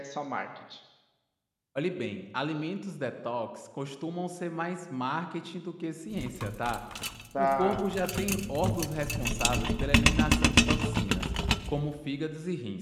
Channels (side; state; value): both; identical; correlation 1.00